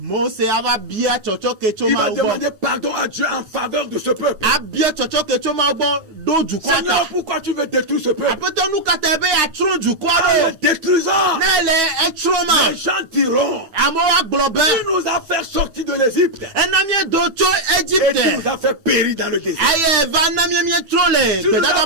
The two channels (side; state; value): left; late; 9.2 ms